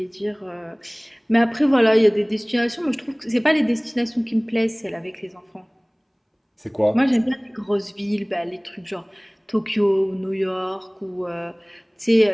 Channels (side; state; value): both; identical; correlation 1.00